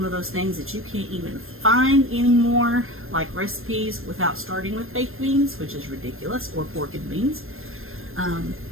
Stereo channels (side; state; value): left; late; 0.60 ms